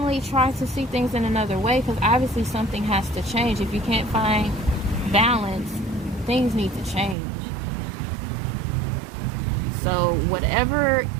try to see things in another way, because obviously something has to change. If you can't find balance, things need to change. So whatever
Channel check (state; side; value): drops out; left; at 7.2 s